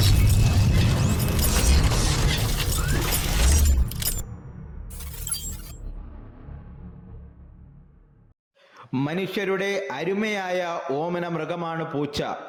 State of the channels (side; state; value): both; identical; correlation 1.00